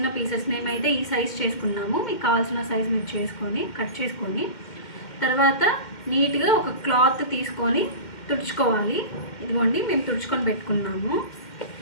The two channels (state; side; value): late; right; 2.1 ms